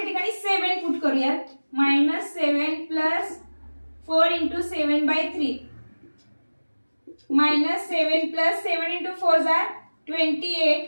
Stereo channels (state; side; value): inverted; both; correlation -1.00